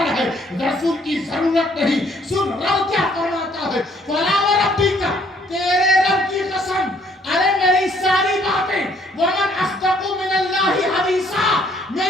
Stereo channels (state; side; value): normal; both; correlation 0.64